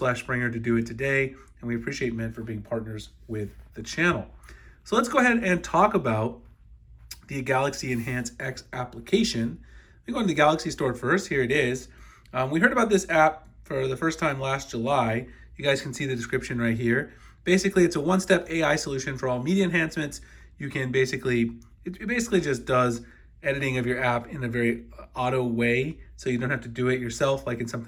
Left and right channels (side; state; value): both; identical; correlation 1.00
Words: to do it today, and we appreciate Mint for being partners with the channel. So let's go ahead and talk about the Galaxy Enhance X application. We go into the Galaxy Store first. Here it is. We heard about this app for the first time last July. You guys can see the description right here. Basically, it's a one-step AI solution for all media enhancements. You can it basically just does editing of your app in a very auto way, so you don't have to do it yourself like in